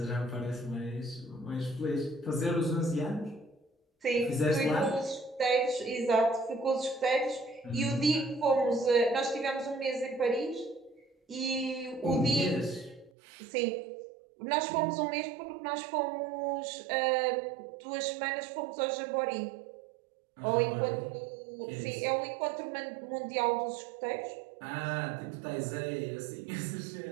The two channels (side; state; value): left; drops out; at 13.1 s